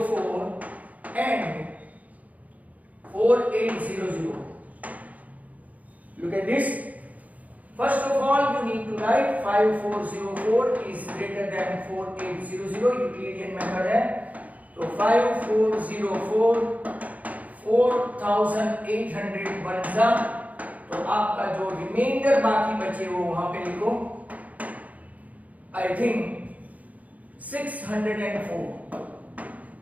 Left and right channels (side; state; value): left; late; 0.073 ms